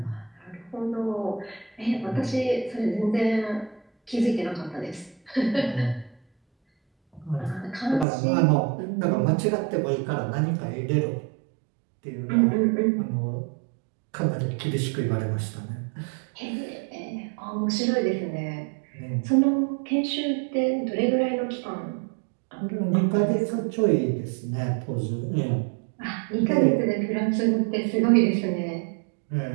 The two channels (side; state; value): left; drops out; at 8.1 s